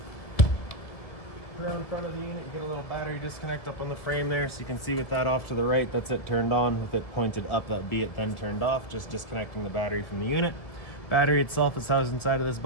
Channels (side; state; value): right; late; 1.9 ms